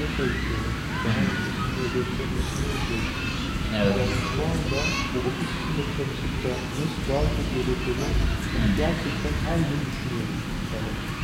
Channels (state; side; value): identical; both; correlation 1.00